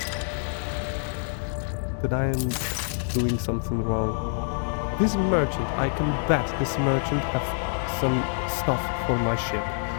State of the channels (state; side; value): silent; right; digital silence